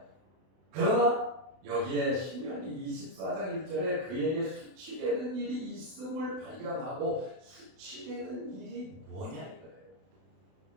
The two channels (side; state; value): left; late; 32 ms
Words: 그러나 여기에 신명기 24장 1절에 그에게 수치되는 일이 있음을 발견하고 수치되는 일이 뭐냐 이거예요.